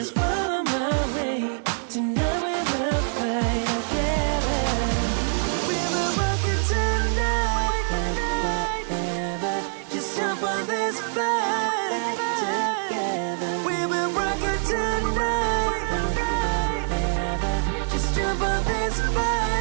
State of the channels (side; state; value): left; silent; digital silence